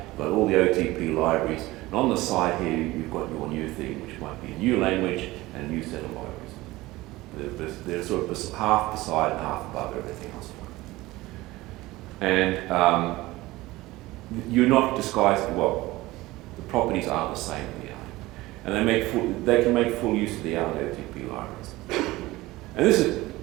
got all the OTP libraries, and on the side here you've got your new thing, which might be a new language and a new set of libraries. They're sort of half beside and half above everything else. And you're not disguising, well, the properties are the same in the Erlang. And they can make full use of the Erlang OTP libraries. And this is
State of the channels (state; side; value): quieter; left; 19.0 dB